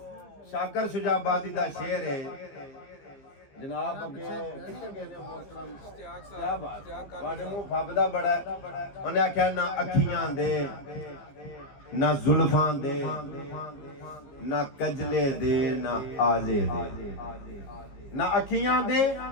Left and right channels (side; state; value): right; late; 15 ms